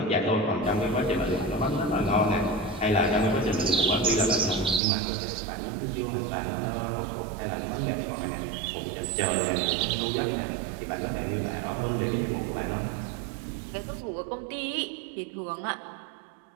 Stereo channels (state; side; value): drops out; left; at 4.8 s